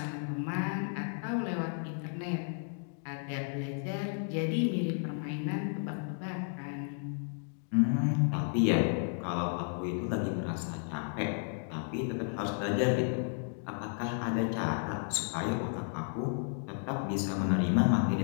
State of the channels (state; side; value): silent; right; 56 dB below the other